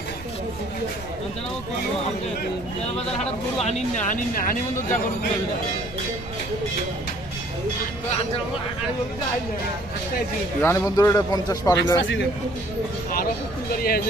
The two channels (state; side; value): noise; right; rumble, 15 dB below the sound